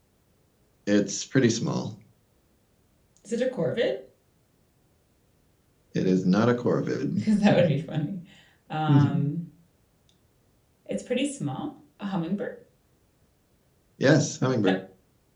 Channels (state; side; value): identical; both; correlation 1.00